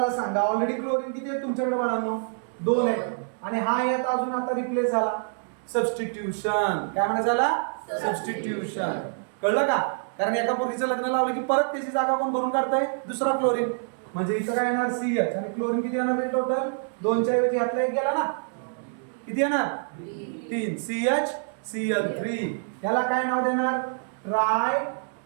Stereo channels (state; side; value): silent; left; digital silence